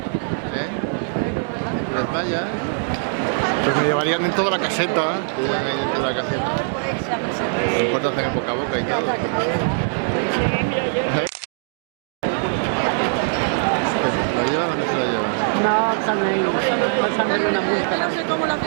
¿Eh? Las mallas. Pues me llevarían dentro de la caseta. Te llevan ahí dentro de la caseta. No importa hacer el boca a boca y todo. ¿Lo llevan o no se lo llevan? No, también. Pásame una multa. No sé cómo la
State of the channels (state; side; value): silent; left; digital silence